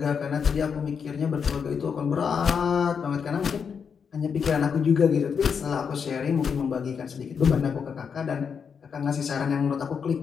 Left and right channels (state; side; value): quieter; right; 6.5 dB